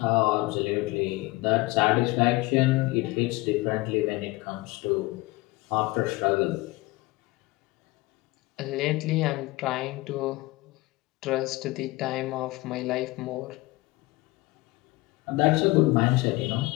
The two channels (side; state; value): right; quieter; 21.1 dB